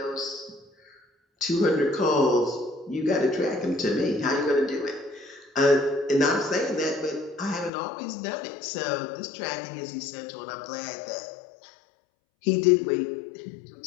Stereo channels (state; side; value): drops out; right; at 7.7 s